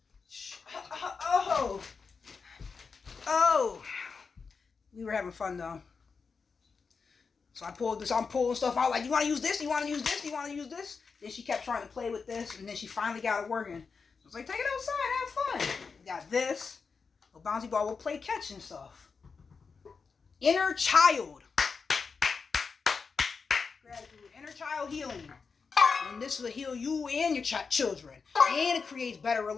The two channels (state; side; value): quieter; right; 5.1 dB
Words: We were having fun, though. So I pulled this. I'm pulling stuff out. Like, you want to use this? You want to use this? You want to use this? Then she kept trying to play with this, and then she finally got it working. I was like, take it outside. Have fun. We got this. A bouncy ball. We'll play catch and stuff. Inner child. Gratitude, inner child healing, and this will heal you and your children, and it creates better